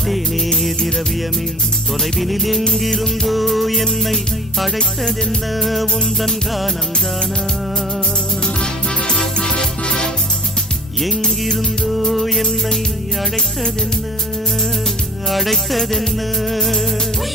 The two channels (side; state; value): both; normal; correlation 0.47